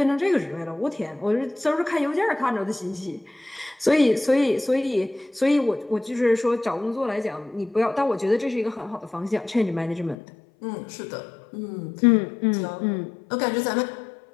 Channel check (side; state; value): right; drops out; at 10.2 s